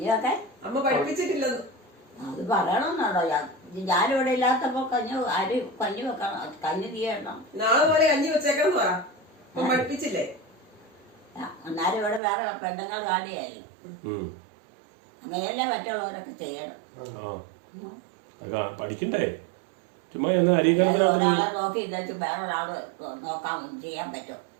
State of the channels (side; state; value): left; drops out; at 12.2 s